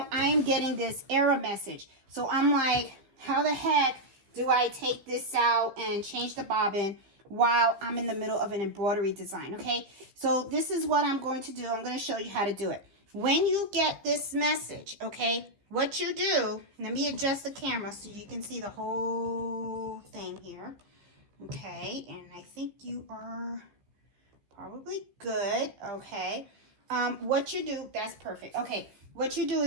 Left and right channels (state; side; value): late; left; 15 ms